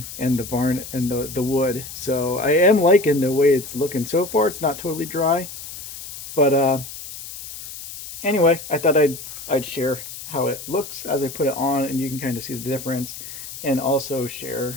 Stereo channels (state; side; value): noise; left; hiss, 12 dB below the sound